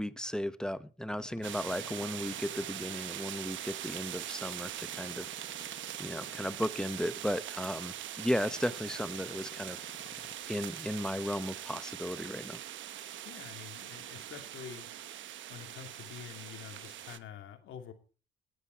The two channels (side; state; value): both; normal; correlation 0.75